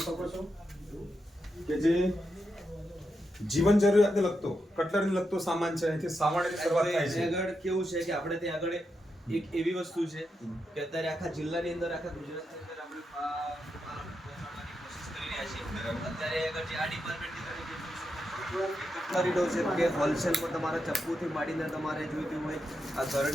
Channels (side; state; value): both; normal; correlation 0.85